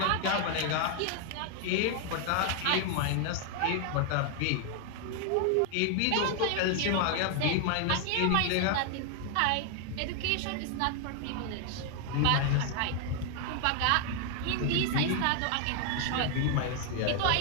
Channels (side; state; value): both; different; correlation 0.00